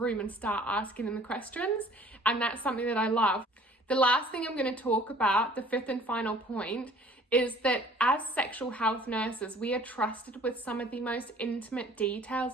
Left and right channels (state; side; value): normal; both; correlation 0.52